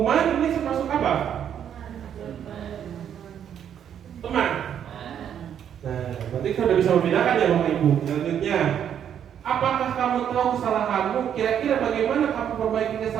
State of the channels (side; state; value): left; quieter; 9.1 dB